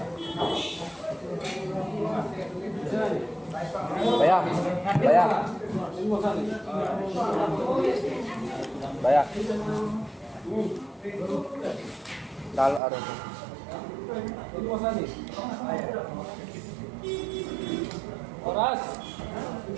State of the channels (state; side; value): drops out; left; at 12.8 s